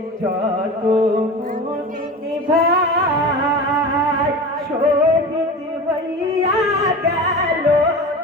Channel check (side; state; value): both; normal; correlation 0.31